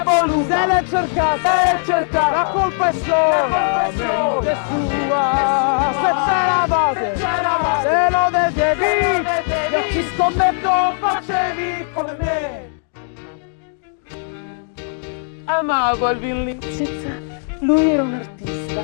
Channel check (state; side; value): silent; right; digital silence